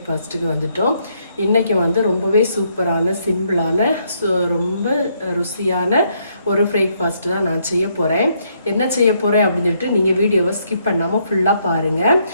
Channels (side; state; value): both; inverted; correlation -0.73